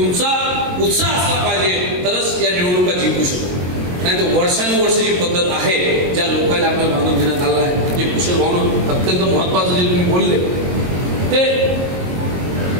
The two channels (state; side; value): late; left; 22 ms